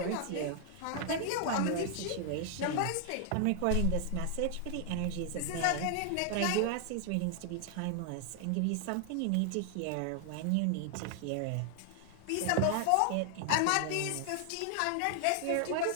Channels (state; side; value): different; both; correlation 0.00